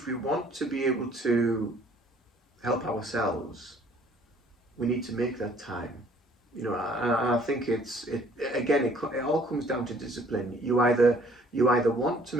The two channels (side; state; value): both; normal; correlation 0.58